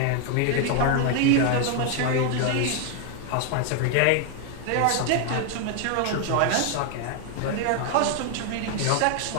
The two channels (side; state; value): both; different; correlation 0.01